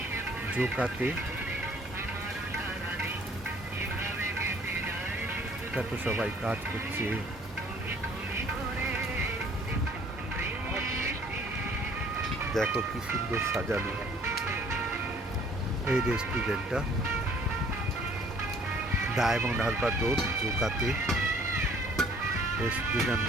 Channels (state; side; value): normal; both; correlation 0.57